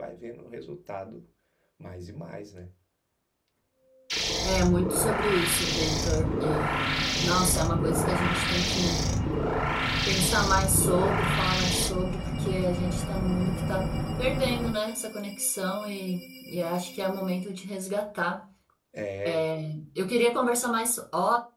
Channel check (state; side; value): identical; both; correlation 1.00